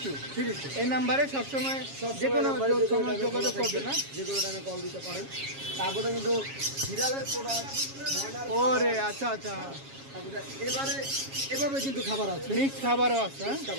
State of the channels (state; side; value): late; left; 7.3 ms